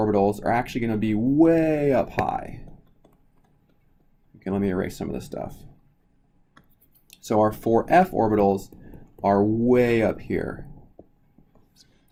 are actually going to be way up high. Okay, let me erase some of this stuff. So our 4f orbitals are way up here,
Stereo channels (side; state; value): both; identical; correlation 1.00